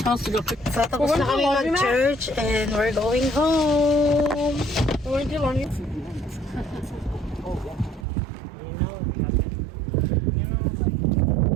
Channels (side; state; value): left; drops out; at 8.1 s